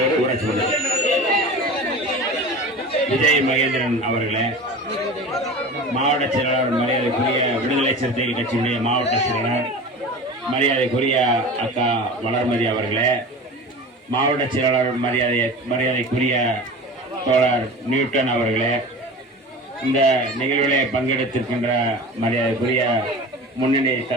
ஊராட்சி மன்ற விஜய் மகேந்திரன் அவர்களே, மாவட்ட செயலாளர் மரியாதைக்குரிய விடுதலை சிறுத்தைகள் கட்சியினுடைய மாவட்ட செயலாளர் மரியாதைக்குரிய அக்கா வளர்மதி அவர்களே, மாவட்ட செயலாளர் மரியாதைக்குரிய தோழர் நியூட்டன் அவர்களே, இந்த நிகழ்விலே பங்கெடுத்திருக்கின்ற மரியாதைக்குரிய முன்னணி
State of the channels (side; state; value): both; normal; correlation 0.35